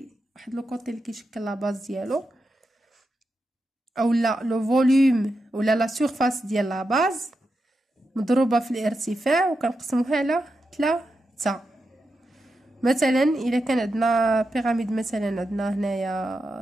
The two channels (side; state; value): both; normal; correlation 0.88